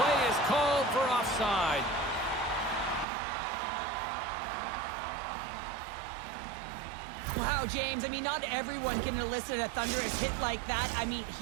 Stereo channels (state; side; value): drops out; left; at 3.1 s